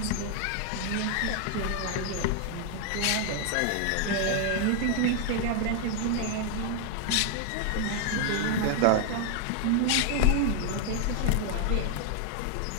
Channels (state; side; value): different; both; correlation 0.00